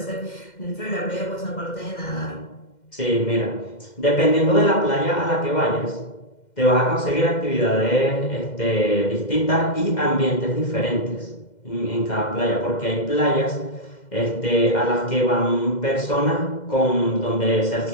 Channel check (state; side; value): late; right; 2.1 ms